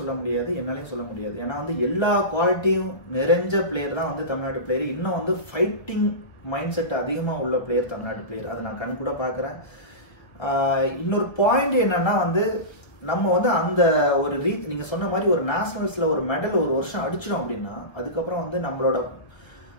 முடியாது, என்னாலையும் சொல்ல முடியாது. ஏன்னா வந்து எல்லா குவாலிட்டியும் நிறைஞ்ச பிளேயர் தான் வந்து தமிழ்நாட்டு பிளேயர். இன்னும் வந்து ஃபைட்டிங் மைண்ட் செட் அதிகமாக உள்ள பிளேயர் தமிழ்நாட்டு பிளேயர், அதை நான் கண் கூட பார்க்குறேன். இன்னொரு பாயிண்ட் என்னன்னா வந்து நம்ம வந்து அந்த ஒரு நீங்கள் சொன்ன மாதிரி ஒரு நேஷனல்ஸில் ஒரு மெடல் ஒரு வருஷம் அடிச்சிடும் அப்படின்னா அதுக்கப்புறம் வந்து நம்மளோட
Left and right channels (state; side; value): late; right; 1.5 ms